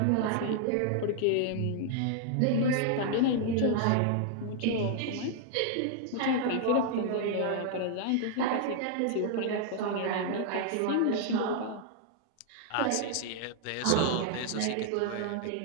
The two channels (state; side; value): different; both; correlation 0.00